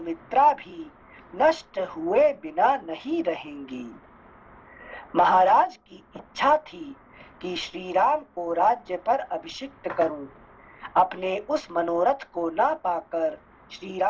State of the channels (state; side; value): identical; both; correlation 1.00